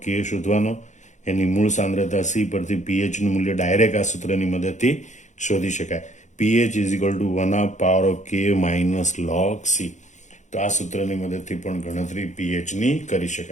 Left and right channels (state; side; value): late; right; 0.35 ms